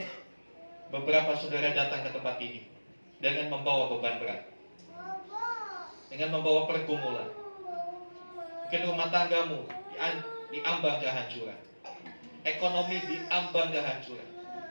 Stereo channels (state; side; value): inverted; both; correlation -1.00